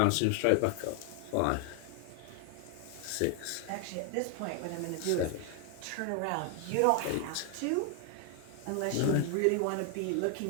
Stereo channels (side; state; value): both; different; correlation 0.00